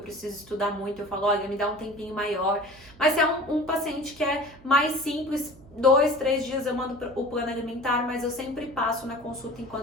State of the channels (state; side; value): noise; right; hum, 23 dB below the sound